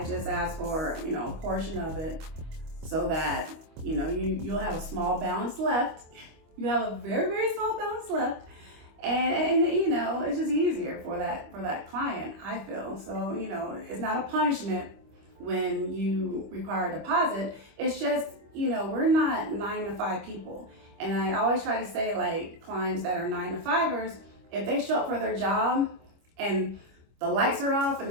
just ask for, a portion of it so that, you'll have a small balance left. You have a very, very small balance left. And it's just easier for that client, I feel. So, it's not a punishment when you require a deposit. It's just, we're not 9-to-5 people. And I always try to say, like, clients that are 9-to-5ers, if they show up for their job and the lights are off and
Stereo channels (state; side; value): late; left; 25 ms